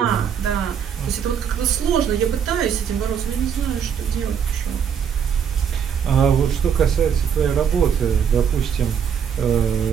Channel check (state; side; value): quieter; left; 7.7 dB